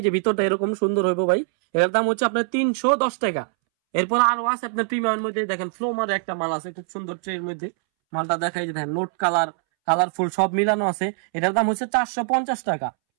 যে ভিতরটা এরকম সুন্দর হইব ভাই। এটার দাম হচ্ছে আপনার 310 টাকা। এরপর আরো আছে আপনার প্রিমিয়ামের মধ্যে, দেখেন ফ্লোমার একটা মাল আছে খুব সুন্দর ট্রের মধ্যে, মালটা দেখাই যে দেখেন নোট কালারফুল সব মিলানো আছে, এটার দাম হচ্ছে 450 টাকা।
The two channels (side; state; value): left; silent; 63 dB below the other